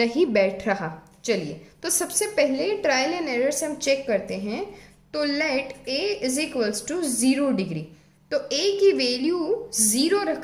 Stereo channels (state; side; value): identical; both; correlation 1.00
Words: बैठ रहा। चलिए, तो सबसे पहले ट्रायल एंड एरर से हम चेक करते हैं। तो let a is equals to 0 degree. तो a की वैल्यू 0